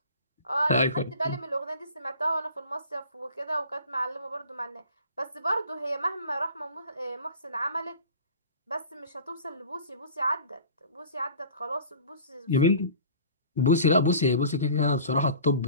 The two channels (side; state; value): both; inverted; correlation -0.43